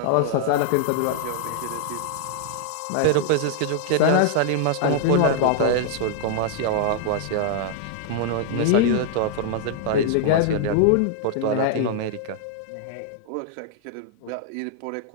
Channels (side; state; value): both; different; correlation 0.00